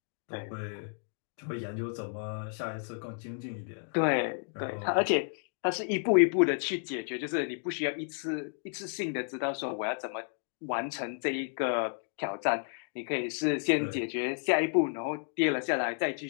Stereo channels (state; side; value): silent; right; digital silence